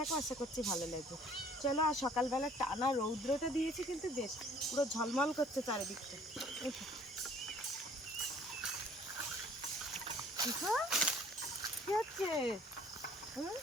আশা করছি ভালো লাগবে। চলো। আর সকালবেলা টানা রৌদ্রটা দিয়েছে কিন্তু বেশ, পুরো ঝলমল করছে চারিদিকটা। চিকু কি হচ্ছে?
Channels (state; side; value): normal; both; correlation 0.55